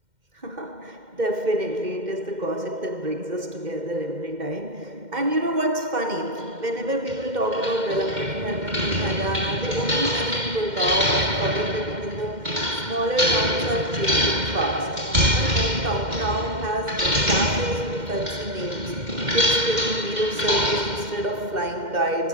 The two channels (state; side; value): late; left; 2.1 ms